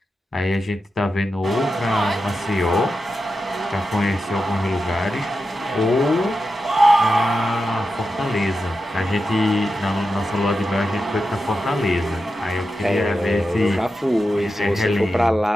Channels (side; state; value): both; normal; correlation 0.90